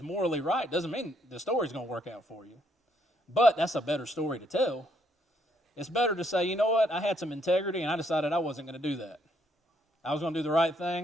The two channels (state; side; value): normal; both; correlation 0.71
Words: morally right doesn't mean the story's going to work out for you. But that's a better story to tell. It's better to say, you know what, I had some integrity and I decided I wasn't going to do that. I was going to do the right